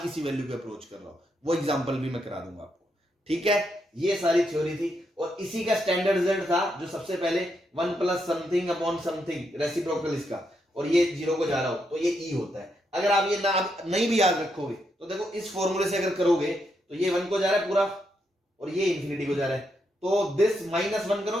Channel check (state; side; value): normal; both; correlation 0.80